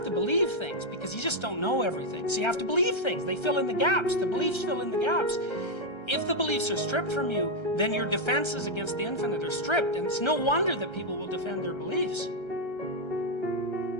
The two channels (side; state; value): right; late; 1.3 ms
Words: to believe things because you just don't know everything. So you have to believe things. They fill in the gaps. The beliefs fill in the gaps. If the beliefs are stripped from you, then your defenses against the infinite are stripped, and it's no wonder that people will defend their beliefs.